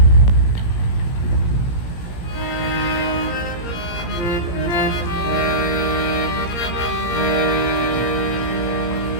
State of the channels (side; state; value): right; late; 17 ms